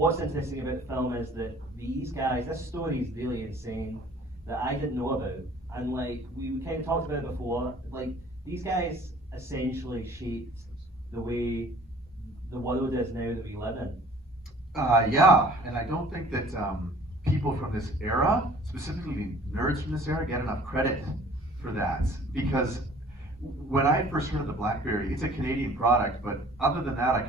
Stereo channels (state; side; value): normal; both; correlation 0.51